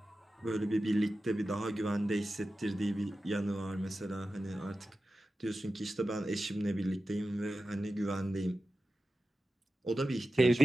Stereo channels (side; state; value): both; normal; correlation 0.93